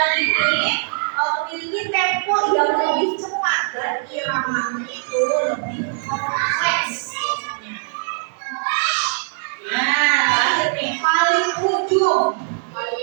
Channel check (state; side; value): silent; left; digital silence